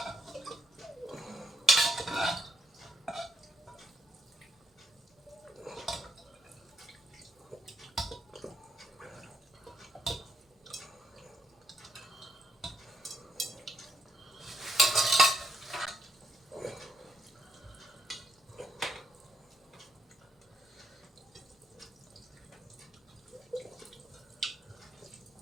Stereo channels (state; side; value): normal; both; correlation 0.77